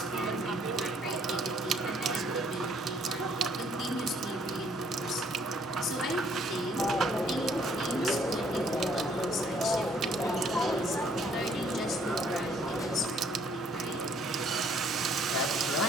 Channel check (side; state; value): both; normal; correlation 0.63